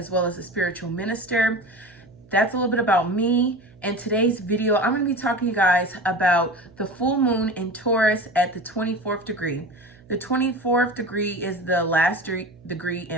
well as a spiritual minister. That's a little bit about me. In today's video, I'm going to be talking to you guys about the full moon in Taurus at the 24th degree. The 24th degree is the last degree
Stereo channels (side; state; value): right; noise; hum, 26 dB below the sound